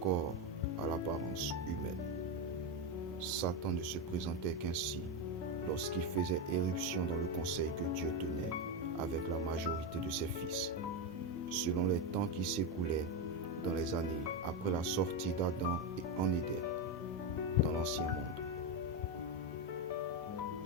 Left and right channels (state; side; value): normal; both; correlation 0.09